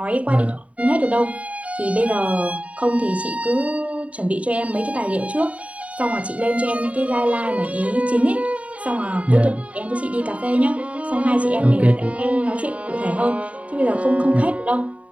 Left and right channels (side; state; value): left; late; 0.066 ms